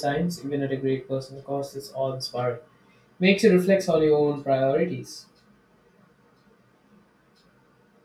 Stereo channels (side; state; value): both; identical; correlation 1.00